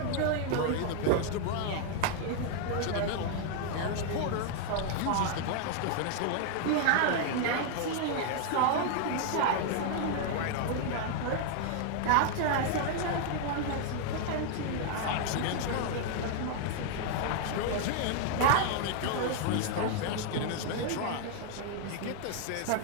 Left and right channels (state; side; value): different; both; correlation 0.00